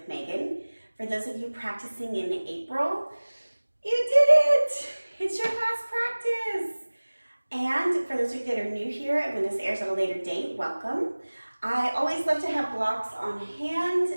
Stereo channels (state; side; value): inverted; both; correlation -1.00